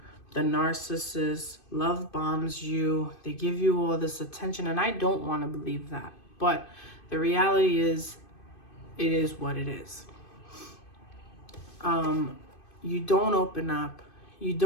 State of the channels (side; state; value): right; late; 2.5 ms